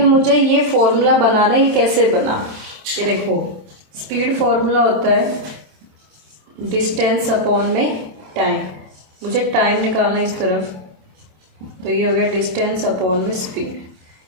मुझे ये फॉर्मूला बनाना है। ये कैसे बना, ये देखो, स्पीड फॉर्मूला होता है डिस्टेंस अपॉन में टाइम। मुझे टाइम निकालना है इस तरफ, तो ये हो गया डिस्टेंस अपॉन में स्पीड।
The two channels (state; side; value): late; left; 27 ms